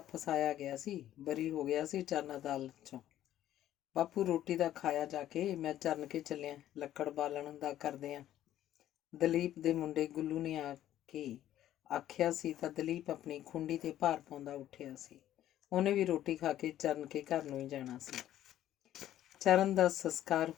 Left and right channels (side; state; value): right; quieter; 12.5 dB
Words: ਫਸਾਇਆ ਗਿਆ ਸੀ, ਬਰੀ ਹੋ ਗਿਆ ਸੀ ਚਰਨ ਅਦਾਲਤ 'ਚੋਂ। ਬਾਪੂ ਰੋਟੀ ਦਾ ਖਾਇਆ ਜਾ ਕੇ, ਮੈਂ ਚਰਨ ਕੇ ਚੱਲਿਆ, ਲੱਕੜ ਬਾਲਣ ਦਾ ਕਰਦੇ ਆ। ਦਲੀਪ ਦੇ ਮੁੰਡੇ ਗੁੱਲੂ ਨੇ ਆ ਕੇ ਆਖਿਆ ਸੀ ਤਾਂ ਦਲੀਪ ਆਪਣੀ ਖੁੰਡੀ 'ਤੇ ਭਾਰ ਪਾਉਂਦਾ ਉੱਠਿਆ ਸੀ। ਉਹਨੇ ਵੀ ਰੋਟੀ ਖਾ ਕੇ ਚਰਨ ਕੇ ਘਰ ਨੂੰ ਹੀ ਜਾਣਾ ਸੀ। ਚਰਨ ਦਾ ਸੰਸਕਾਰ